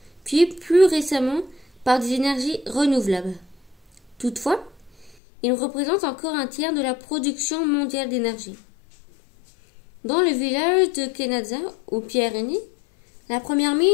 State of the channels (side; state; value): right; drops out; at 5.2 s